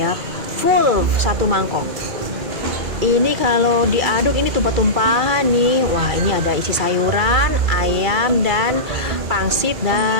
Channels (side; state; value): left; late; 2.3 ms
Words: full satu mangkok. Ini kalau diaduk ini tumpah-tumpahan nih. Wah, ini ada isi sayuran, ayam, dan pangsit